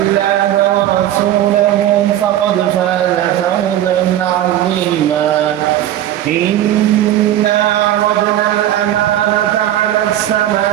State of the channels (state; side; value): quieter; left; 12.4 dB